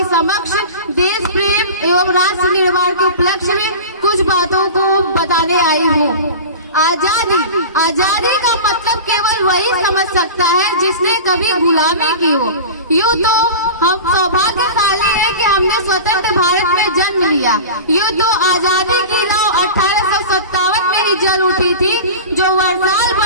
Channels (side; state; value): both; inverted; correlation -0.32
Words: समक्ष देश प्रेम एवं राष्ट्र निर्माण के उपलक्ष्य में कुछ बातों को बताने आई हूँ। आजादी का मतलब केवल वही समझ सकता है जिसने कभी गुलामी की हो। यूँ तो हम सौभाग्यशाली है कि हमने स्वतंत्र भारत में जन्म लिया। यूँ तो आजादी की नाव 1857 में ही जल उठी थी, जो वर्षाल